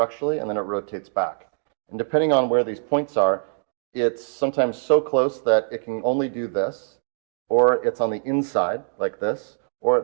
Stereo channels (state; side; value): silent; left; digital silence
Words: and then it rotates back. And depending on where these points are, it's sometimes so close that it can only do this, or it's on the inside, like this,